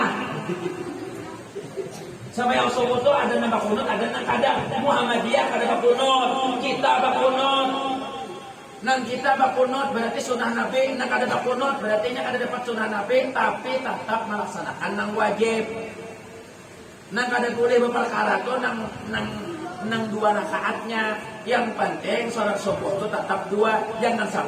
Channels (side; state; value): both; identical; correlation 1.00